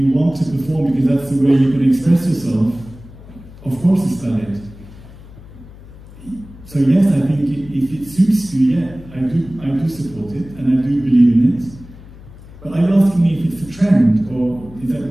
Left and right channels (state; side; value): noise; left; hum, 19 dB below the sound